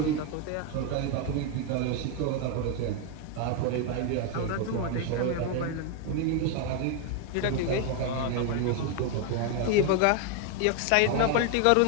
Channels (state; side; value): different; both; correlation 0.01